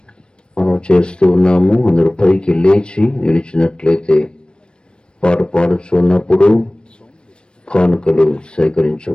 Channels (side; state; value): right; late; 0.055 ms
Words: మనం చేస్తూ ఉన్నాము. అందరూ పైకి లేచి నిలిచినట్లయితే పాట పాడుచున్నప్పుడు కానుకలు